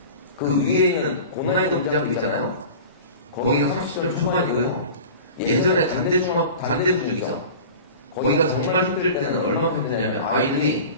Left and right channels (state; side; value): inverted; both; correlation -0.37